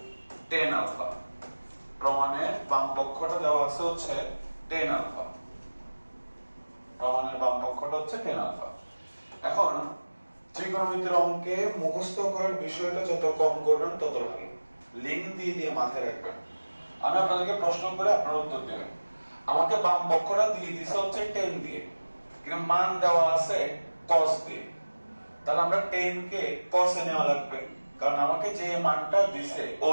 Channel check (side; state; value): both; inverted; correlation -1.00